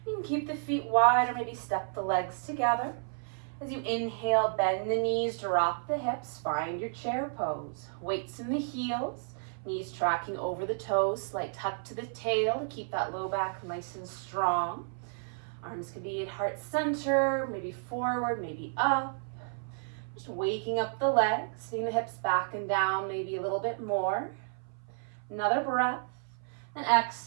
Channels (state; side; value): silent; left; 57 dB below the other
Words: You can keep the feet wide or maybe step the legs together. As you inhale, bend the knees, drop the hips, find your chair pose. Weights in the heels, knees tracking over the toes, slight tuck to the tail to keep that low back nice and strong. Arms can be at heart center, maybe forward, maybe up. Just waking up the legs, seeing the hips back and down maybe a little bit more. Another breath, and